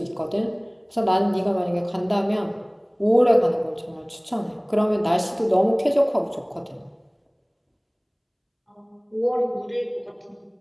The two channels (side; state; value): both; identical; correlation 1.00